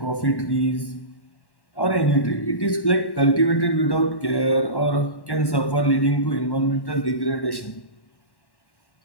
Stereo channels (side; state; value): right; late; 1.1 ms